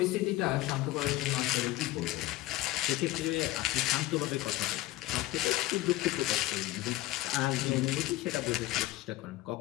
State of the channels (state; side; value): quieter; right; 17.0 dB